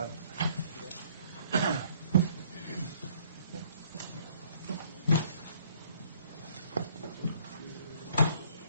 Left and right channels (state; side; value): inverted; both; correlation -0.61